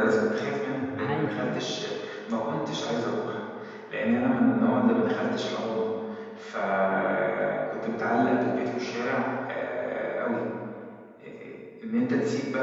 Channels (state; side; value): identical; both; correlation 1.00